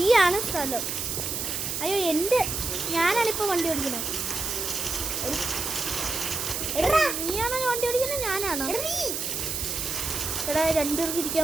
സ്ഥലം. അയ്യോ ഞാനാണിപ്പോ വണ്ടി ഓടിക്കുന്നത്. എടാ നീയാണോ വണ്ടി ഓടിക്കുന്നത്? ഞാനാണോ? എടാ നീ എടാ രണ്ടുപേർക്ക്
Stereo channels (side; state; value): right; noise; hiss, 2 dB below the sound